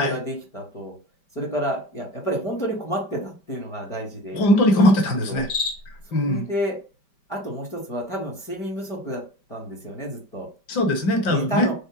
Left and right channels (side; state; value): right; late; 5.1 ms